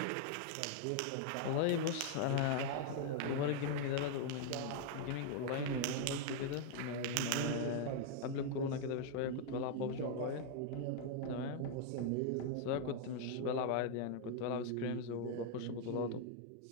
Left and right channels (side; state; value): both; different; correlation 0.00